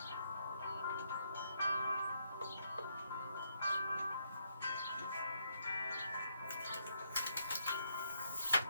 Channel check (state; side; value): inverted; both; correlation -0.75